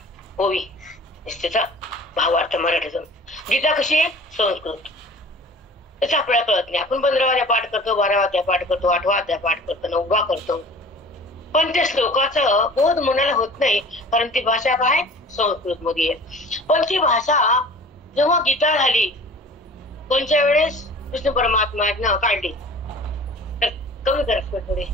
ओवी त्याचा भावार्थ मराठीतून. गीता कशी आहे? संस्कृत. त्याचा आपल्याला कळत नाही. आपण 15 अध्याय पाठ करतो, 12 अध्याय पाठ करतो, 8 अध्याय पाठ करतो, 9 करतो. पण त्या श्लोकाचं बोध मनाला होत नाही, कारण ती भाषा काय? संस्कृत मध्ये आहे. पण ती भाषा जेव्हा गीता झाली कोणत्या वेळेस? कृष्ण परमात्म्यानं काढली. तर कमी करा थोडे.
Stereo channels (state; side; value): normal; both; correlation 0.44